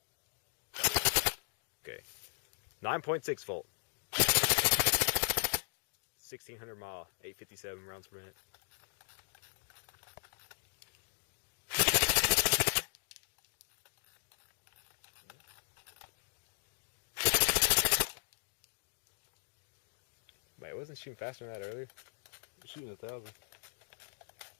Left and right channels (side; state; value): right; silent; digital silence